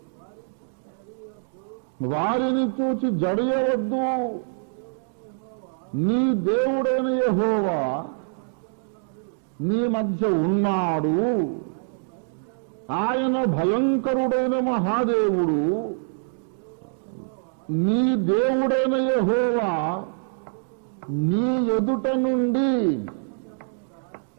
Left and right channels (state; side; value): silent; left; digital silence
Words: వారిని చూచి జడియవద్దు, నీ దేవుడైన యెహోవా నీ మధ్య ఉన్నాడు, ఆయన భయంకరుడైన మహాదేవుడు. నీ దేవుడైన యెహోవా నీ ఎదుట నుండి